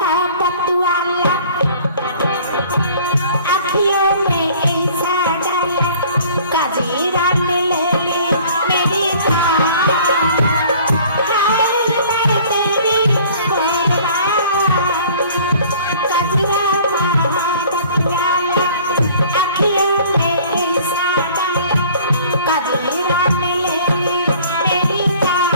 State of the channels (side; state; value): both; inverted; correlation -0.51